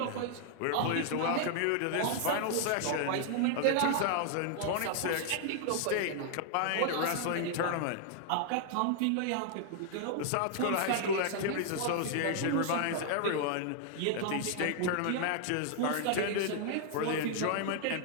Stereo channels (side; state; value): both; different; correlation 0.00